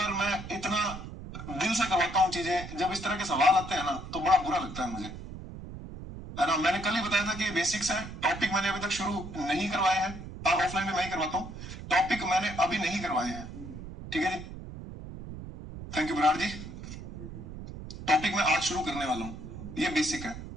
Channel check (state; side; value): noise; right; rumble, 11 dB below the sound